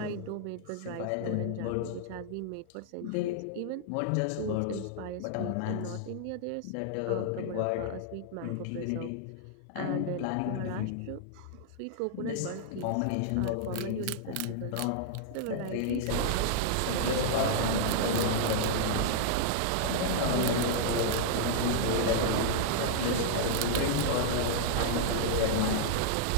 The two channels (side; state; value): both; different; correlation -0.01